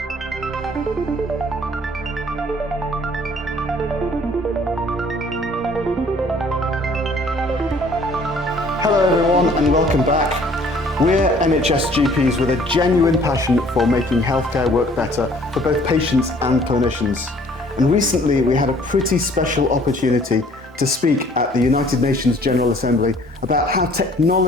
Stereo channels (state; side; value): normal; both; correlation 0.57